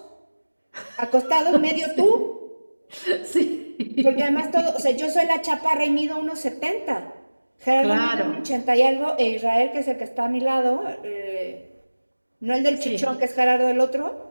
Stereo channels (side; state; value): both; inverted; correlation -1.00